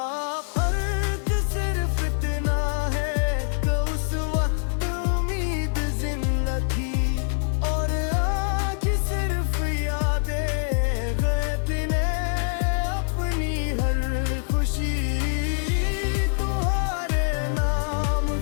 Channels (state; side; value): silent; right; digital silence